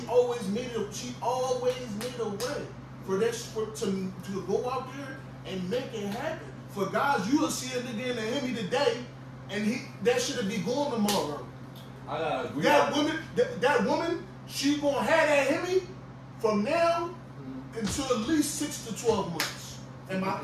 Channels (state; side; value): identical; both; correlation 1.00